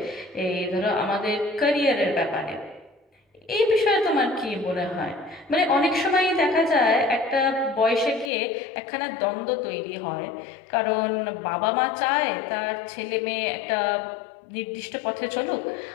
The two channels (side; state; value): right; drops out; at 8.3 s